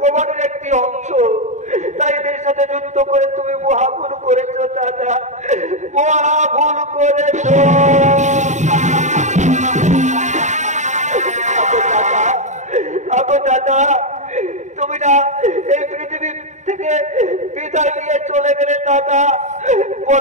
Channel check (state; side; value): late; left; 0.34 ms